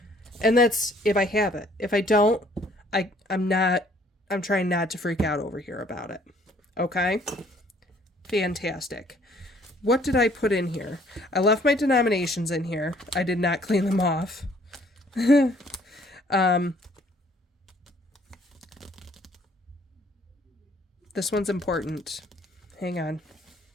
And that's if I have it. If I don't, I'm trying not to freak out over here about it. Okay? Fantastic. What did I put in here? I left my denominations in here. I did not clean them off. This one's important. Hang on.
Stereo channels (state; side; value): normal; both; correlation 0.60